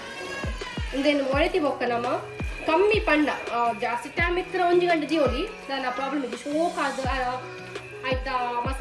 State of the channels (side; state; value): both; identical; correlation 1.00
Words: ಒಂದೇನು ಮೊರೆತಿ ಬೊಕ್ಕ ನಮ್ಮ ಕಮ್ಮಿ ಪಂಡ ಜಾಸ್ತಿ ಟೈಮ್ ಇತ್ತರ 1 ಗಂಟೆ ಜೀವಲಿ ನನ್ನ ಪ್ರಾಬ್ಲಮ್ ಇದೆ ಶೋಕ್ ಅದು ಆಯ್ತಾ